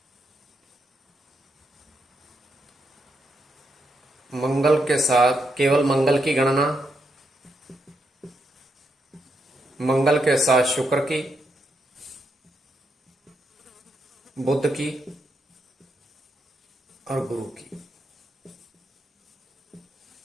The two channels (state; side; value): normal; both; correlation 0.81